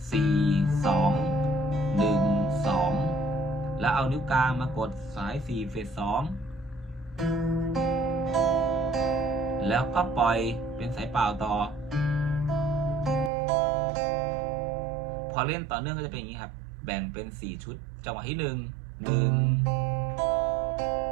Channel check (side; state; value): left; drops out; at 13.3 s